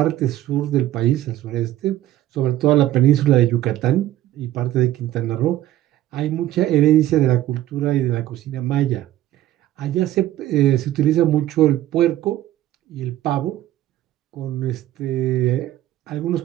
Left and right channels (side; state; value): left; quieter; 13.6 dB